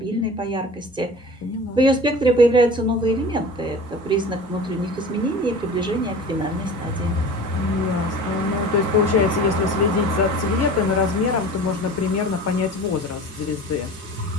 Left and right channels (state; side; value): normal; both; correlation 0.38